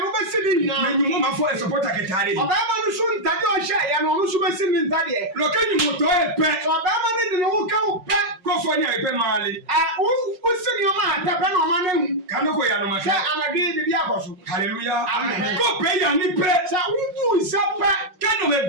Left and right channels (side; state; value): left; late; 5.5 ms